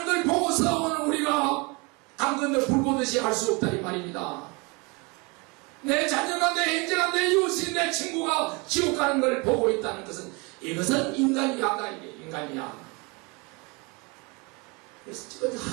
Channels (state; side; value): quieter; left; 28.6 dB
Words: 걸 보고서 오늘 우리가 당근을 불 보듯이 할 수 없다 이 말입니다. 내 자녀가, 내 형제가, 내 이웃이, 내 친구가 지옥 가는 걸 보고 있다는 것은 이것은 인간이야다. 이게 인간이야. 그래서 지금